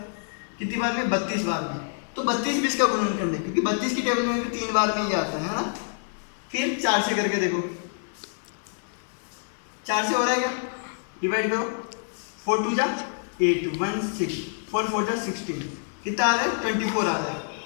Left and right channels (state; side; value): silent; right; digital silence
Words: कितनी बार में, 32 बार में। तो 32 भी इसका गुणनखंड है, क्योंकि 32 की टेबल में भी 3 बार में ही आता है ना। फिर 4 से करके देखो, 4 से हो रहा है क्या, डिवाइड करो, 4 2 जा 8, 1 6, 4 4 जा 16, कितना आ रहा है, 24 आ